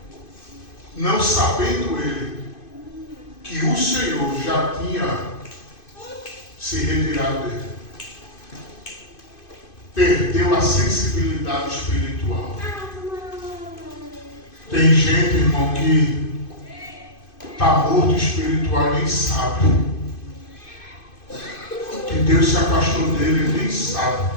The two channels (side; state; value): right; late; 2.5 ms